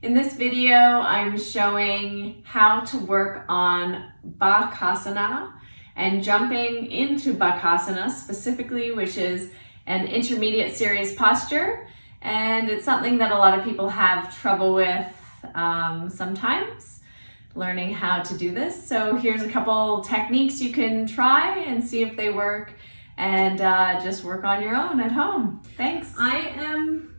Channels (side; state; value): both; inverted; correlation -1.00